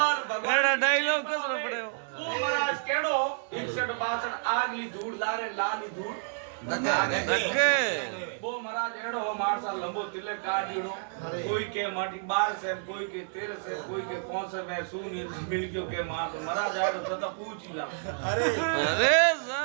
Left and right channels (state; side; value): silent; left; digital silence